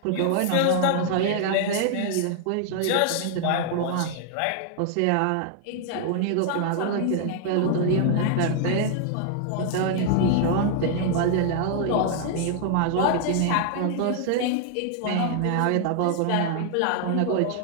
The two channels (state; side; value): different; both; correlation 0.00